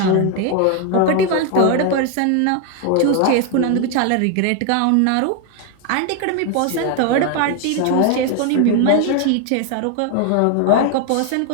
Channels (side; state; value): both; different; correlation 0.01